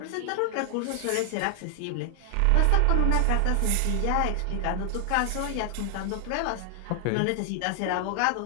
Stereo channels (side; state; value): both; different; correlation 0.00